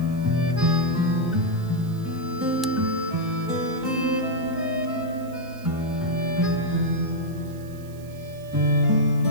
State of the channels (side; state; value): right; noise; hiss, 24 dB below the sound